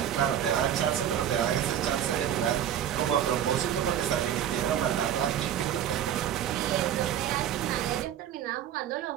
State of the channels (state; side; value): quieter; left; 10.3 dB